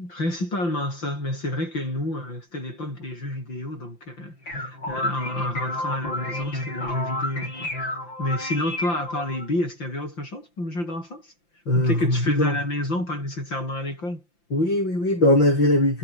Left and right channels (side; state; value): right; late; 5.8 ms